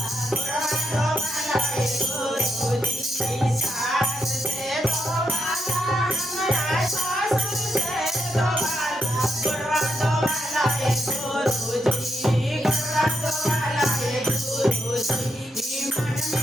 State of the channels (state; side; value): normal; both; correlation 0.81